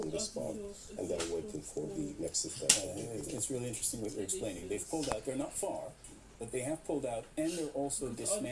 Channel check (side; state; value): both; identical; correlation 1.00